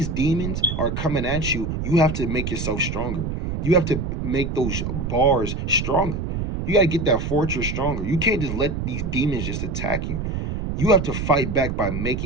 demons are coming at you, you have to make yourself stronger. You have to make those bars stronger. You got to get that fortress stronger. You can't just let these demons just attack you. You have to fight back by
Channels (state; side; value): noise; right; rumble, 3 dB below the sound